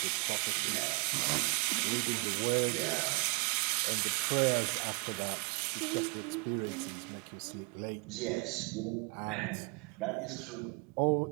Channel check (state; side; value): quieter; left; 33.4 dB